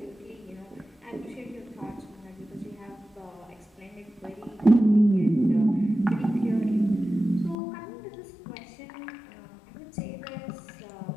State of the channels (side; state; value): right; drops out; at 7.6 s